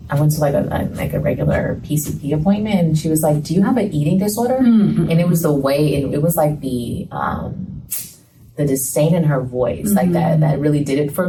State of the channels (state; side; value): identical; both; correlation 1.00